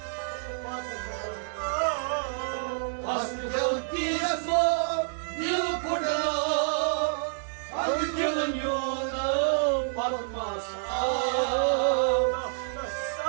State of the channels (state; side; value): silent; left; 58 dB below the other